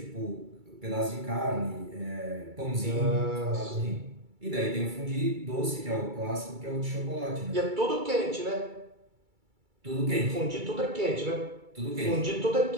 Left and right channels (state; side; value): late; left; 2.3 ms